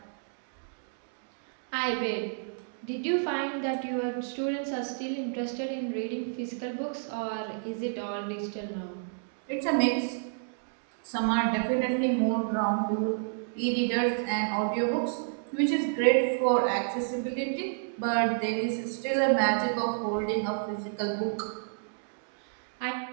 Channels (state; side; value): silent; left; digital silence